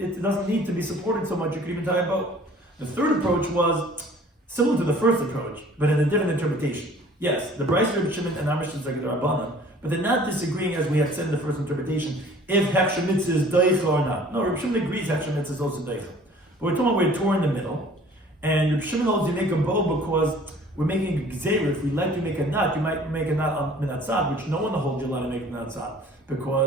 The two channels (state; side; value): normal; both; correlation 0.51